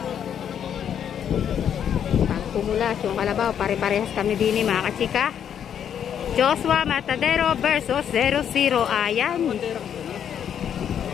Pumulas yung kalabaw, pare-parehas kami din mga kachika. Joshua Matadero versus 00. Ayan.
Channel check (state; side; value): quieter; right; 8.9 dB